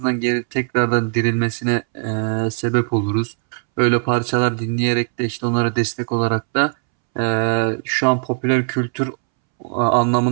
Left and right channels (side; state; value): left; silent; 66 dB below the other